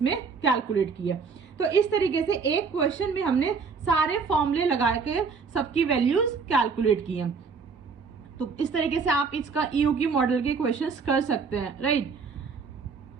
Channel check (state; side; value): quieter; left; 5.2 dB